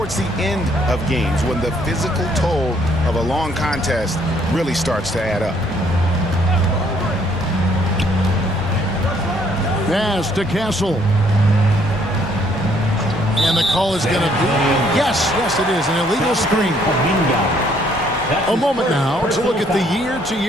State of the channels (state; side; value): normal; both; correlation 0.66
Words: the end of games when the physical toll of a long contest really starts to add up. Pass to Castle. And the call is going to be, yes, it is, an illegal screen. A moment now to look at the